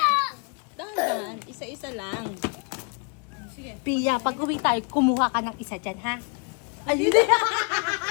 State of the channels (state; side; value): quieter; right; 37.0 dB